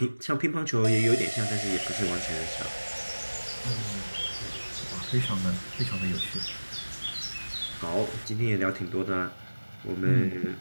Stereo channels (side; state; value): both; inverted; correlation -1.00